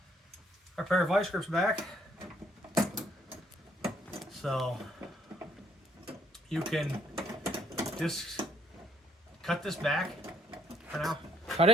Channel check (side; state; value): both; normal; correlation 0.67